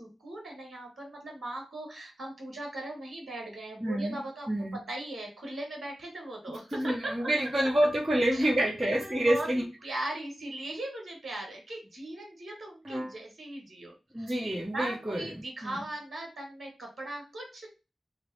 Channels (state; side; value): normal; both; correlation 0.93